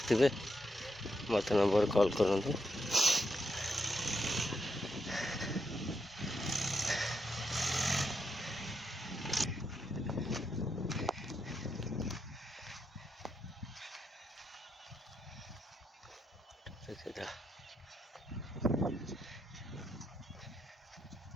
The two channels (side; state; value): both; normal; correlation 0.82